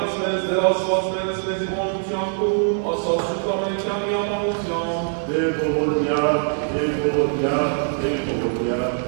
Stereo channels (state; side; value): silent; left; 64 dB below the other